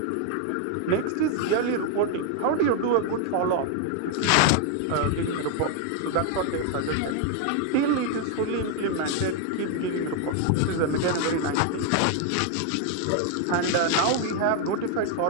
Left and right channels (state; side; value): different; both; correlation 0.00